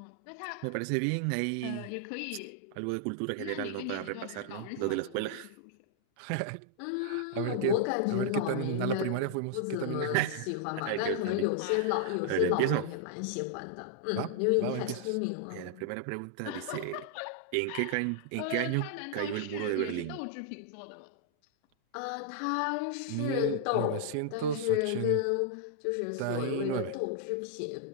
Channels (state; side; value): different; both; correlation -0.01